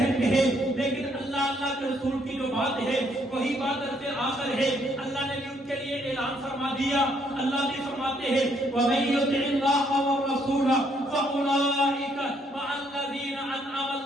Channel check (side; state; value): both; normal; correlation 0.70